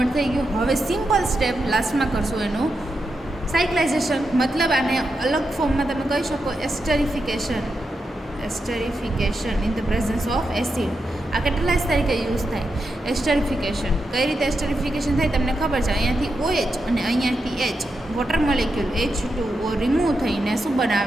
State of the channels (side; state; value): both; normal; correlation 0.86